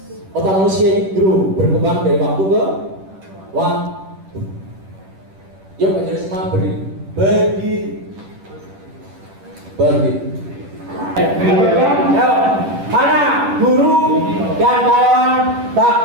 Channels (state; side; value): late; left; 10 ms